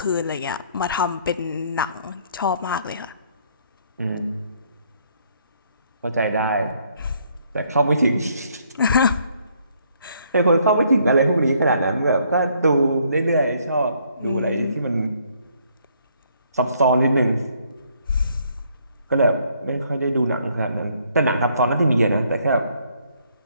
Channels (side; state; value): both; inverted; correlation -0.67